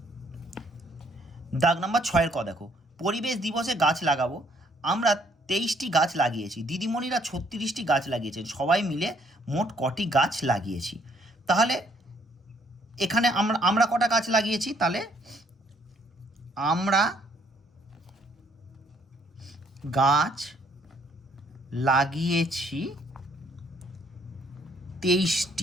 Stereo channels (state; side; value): normal; both; correlation 0.65